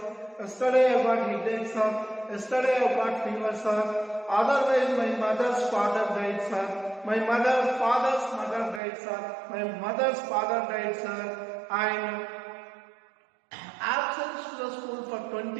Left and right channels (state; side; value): drops out; left; at 8.8 s